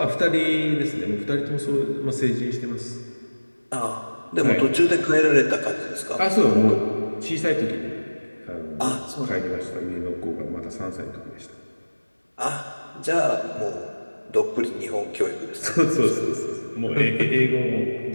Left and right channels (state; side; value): inverted; both; correlation -1.00